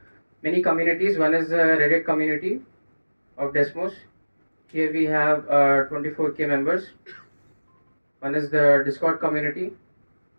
many communities. One is the Reddit community of Desmos. Here we have 24K members. One is the Discord community.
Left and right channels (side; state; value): both; inverted; correlation -1.00